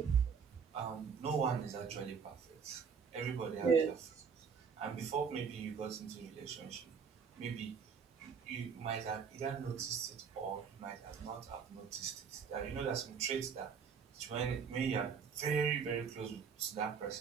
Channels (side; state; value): left; quieter; 6.4 dB